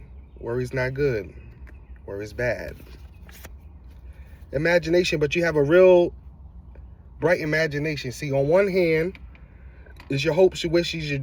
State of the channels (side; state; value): both; identical; correlation 1.00